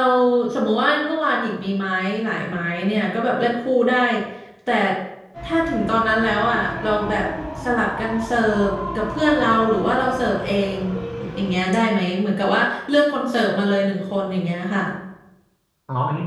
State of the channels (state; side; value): identical; both; correlation 1.00